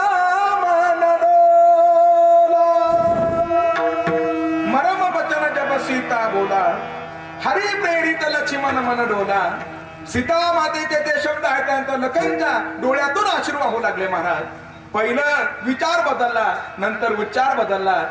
मन डोला. मरम बचन जब सीता बोला, हरि प्रेरित लक्ष्मण मन डोला. सीता मातेचे ते शब्द आहेत, त्यानंतर लखनच्या डोळ्यातून अश्रू वाहू लागले महाराज. पहिलं विचार बदलला, नंतर उच्चार बदलला,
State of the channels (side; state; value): both; identical; correlation 1.00